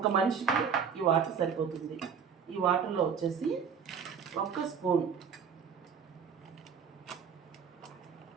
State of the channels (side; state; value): left; quieter; 6.8 dB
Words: మనిషికి ఈ వాటర్ సరిపోతుంది. ఈ వాటర్లో వచ్చేసి 1 స్పూన్